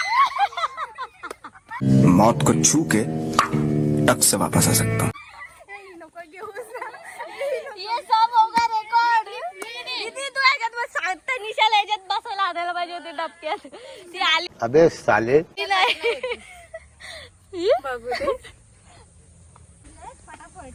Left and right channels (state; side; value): identical; both; correlation 1.00